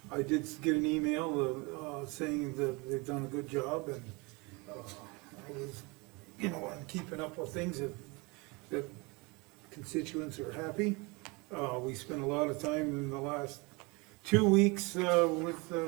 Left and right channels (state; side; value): quieter; left; 27.6 dB